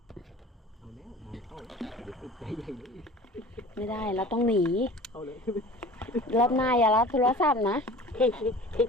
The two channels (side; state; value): both; normal; correlation 0.42